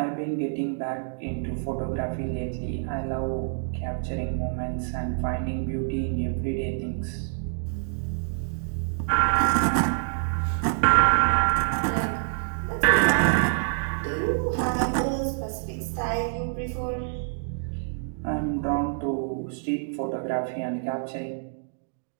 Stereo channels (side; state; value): left; silent; digital silence